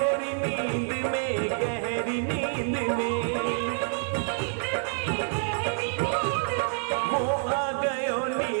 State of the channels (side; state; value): left; silent; 57 dB below the other